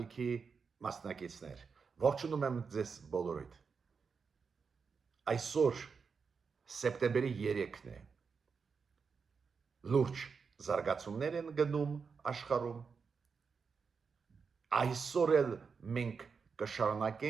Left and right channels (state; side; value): quieter; left; 5.5 dB